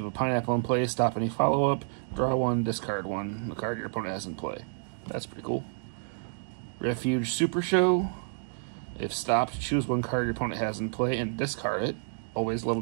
have a Pineapple in play, stop any follow-up, draw 1, discard 1, the card your opponent has in play. That's pretty cool. Refuge Super Show. If stopped, choose one card your opponent has in play and discard it. Always love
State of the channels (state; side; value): silent; left; digital silence